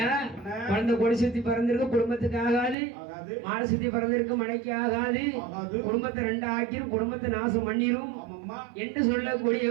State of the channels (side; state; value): left; drops out; at 2.8 s